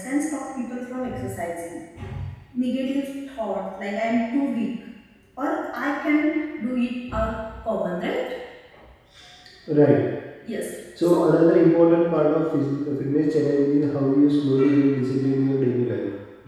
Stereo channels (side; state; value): both; identical; correlation 1.00